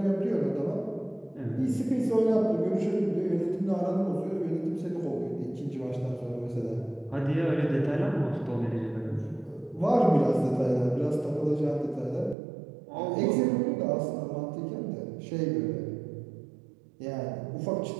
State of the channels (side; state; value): left; drops out; at 12.4 s